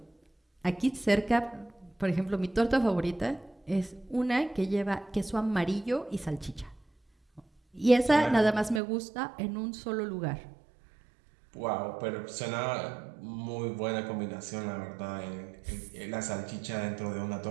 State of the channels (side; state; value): left; drops out; at 8.8 s